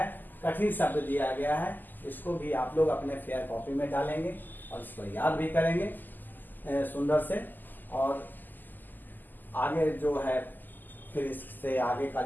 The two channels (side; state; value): right; late; 0.087 ms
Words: कठिन शब्द दिया गया है, इसको भी आप लोग अपने फेयर कॉपी में डालेंगे और इसको याद भी करेंगे सुंदर से। और आगे जो है फिर इससे आगे का